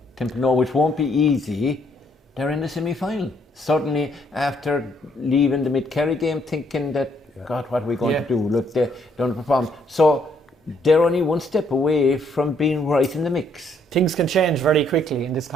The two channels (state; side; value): normal; both; correlation 0.69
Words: Templenoe, which won't be easy, they're in the semi-final. Certainly after leaving the Mid-Kerry game thinking that, God, what are we going to do? Look, they don't perform. So they're only one step away from being right in the mix. Things can change very quickly in this